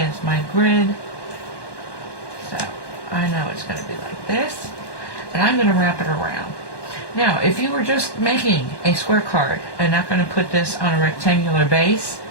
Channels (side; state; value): right; late; 1.1 ms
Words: my grid. So I know it's going to be like this. And I'm going to wrap it around. Now, if you were just making a square card and not going to put this on a rectangular base,